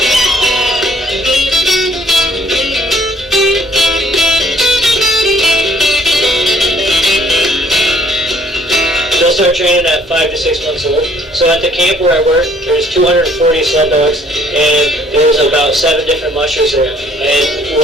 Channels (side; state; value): both; normal; correlation 0.60